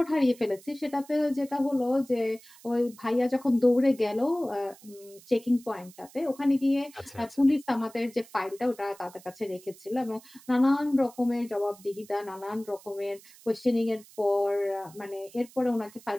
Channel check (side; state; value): right; noise; hiss, 23 dB below the sound